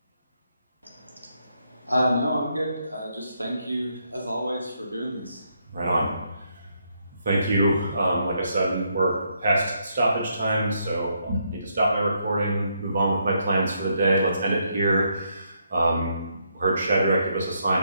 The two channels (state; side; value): inverted; both; correlation -0.76